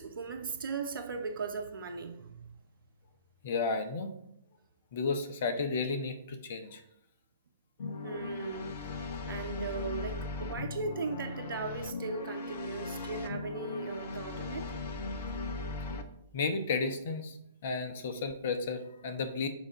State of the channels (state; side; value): inverted; both; correlation -0.47